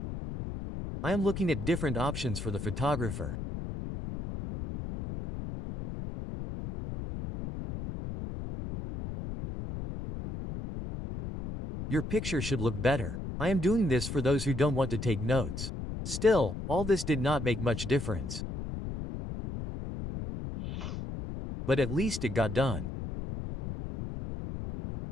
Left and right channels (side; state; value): left; noise; rumble, 6 dB below the sound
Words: I am looking at different options for the photographer. Your picture should look better. I am doing this for those who don't want to take notes. Still, all this did not make much difference. But at least it got done.